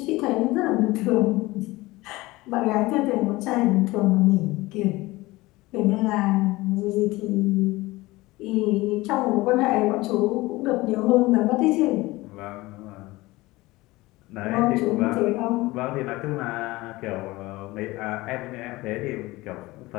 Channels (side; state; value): right; quieter; 20.2 dB